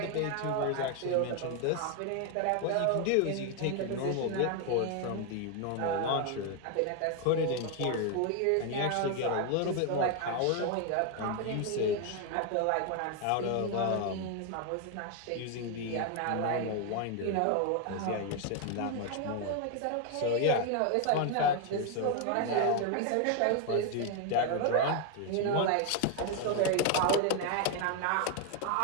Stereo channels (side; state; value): both; different; correlation 0.01